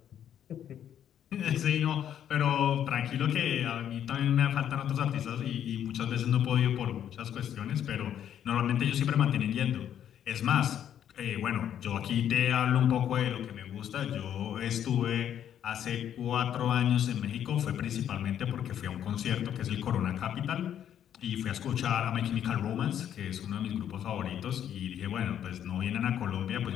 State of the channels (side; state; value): right; quieter; 9.9 dB